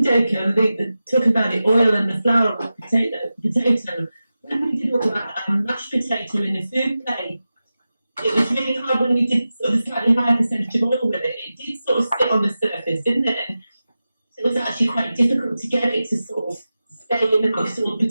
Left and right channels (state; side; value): inverted; both; correlation -0.94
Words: Jacob, talking about the oil and the flour of potato. When we did all that mashed potato in the food play, it was really hard when we did sort of a slightly higher percentage of oil with it. It did sort of sit on the surface, didn't it? And it was actually quite difficult to get it to sort of stay in the actual